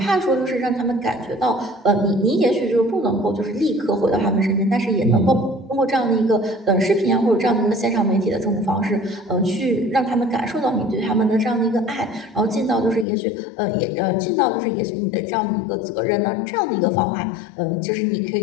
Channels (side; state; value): right; drops out; at 13.1 s